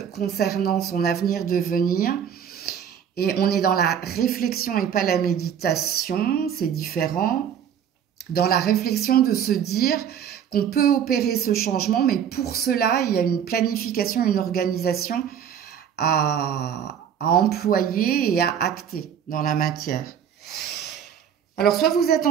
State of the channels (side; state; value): left; quieter; 8.6 dB